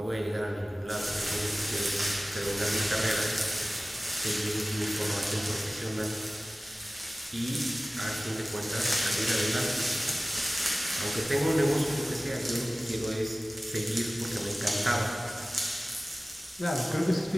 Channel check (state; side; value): normal; both; correlation 0.97